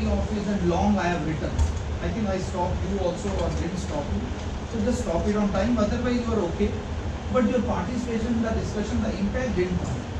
office and long I have written. I think I stopped you also or didn't stop you. So just stop it on time. Otherwise you are okay. But your participation in the discussion, the impact didn't come.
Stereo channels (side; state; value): both; identical; correlation 1.00